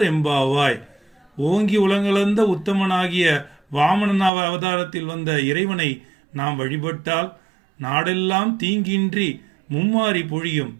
எம்பாவாய். ஓங்கி உலகளந்த உத்தமனாகிய வாமன அவதாரத்தில் வந்த இறைவனை நாம் வழிபட்டால் நாடெல்லாம் தீங்கின்றி மும்மாறி பொழியும்,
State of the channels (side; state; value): left; drops out; at 4.3 s